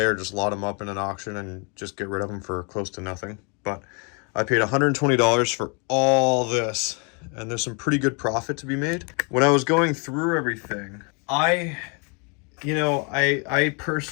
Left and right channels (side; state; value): right; quieter; 34.5 dB